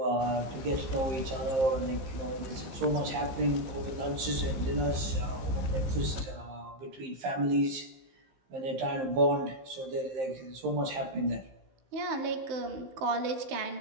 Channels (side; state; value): left; late; 15 ms